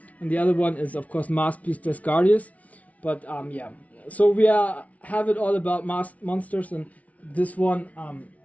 and the other one is of course Masked Beast Desgardius. But yeah. So we have it all about masked monsters, and this one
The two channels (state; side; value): late; right; 0.068 ms